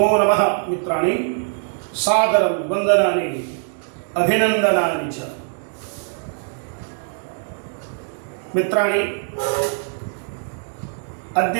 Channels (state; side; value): silent; left; digital silence